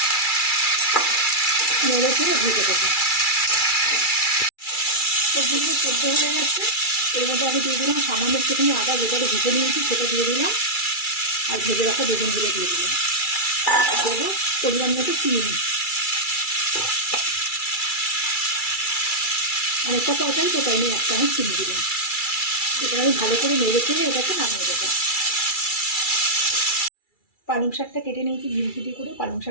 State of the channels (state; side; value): late; right; 2.3 ms